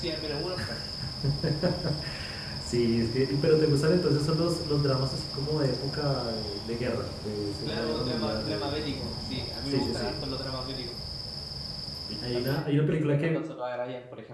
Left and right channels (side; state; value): both; identical; correlation 1.00